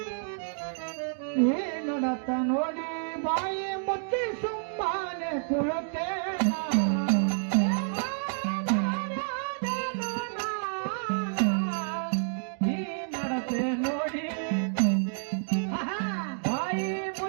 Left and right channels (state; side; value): silent; left; digital silence